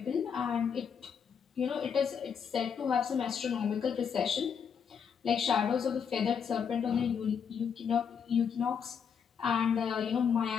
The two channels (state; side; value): quieter; right; 7.0 dB